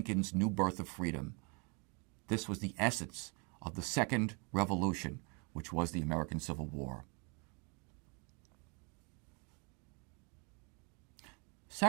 new birth of freedom. This was the essence of the Second Revolution, which was the American Civil War.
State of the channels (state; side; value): quieter; left; 33.7 dB